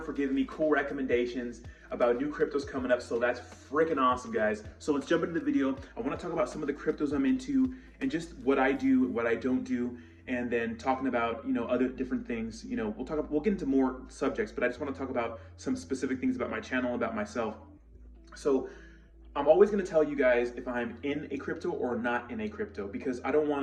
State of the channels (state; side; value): identical; both; correlation 1.00